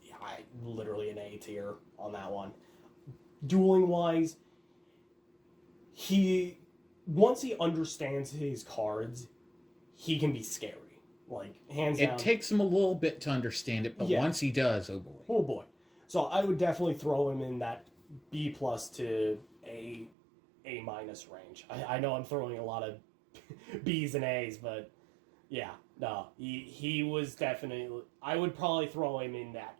Yeah, literally an A tier on that one. Dueling wise, once he understands his cards, he can be scary. Like, hands down. It takes him a little bit to understand it, but once he does, oh boy. Oh boy. So I would definitely throw him in that B+ to A- range. I know I'm throwing a lot of B's and A's, but yeah, no, he was definitely... I would probably throw him in that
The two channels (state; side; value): drops out; left; at 20.1 s